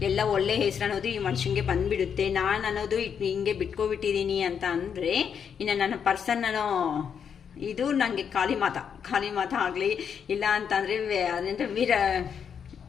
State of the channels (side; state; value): right; quieter; 7.4 dB